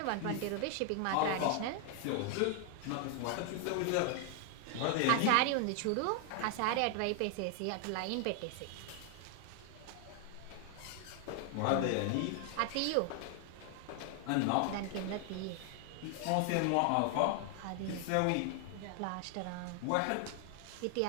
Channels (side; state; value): both; different; correlation 0.00